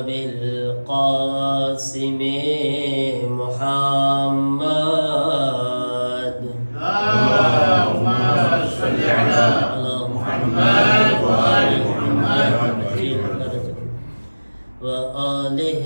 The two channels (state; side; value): inverted; both; correlation -1.00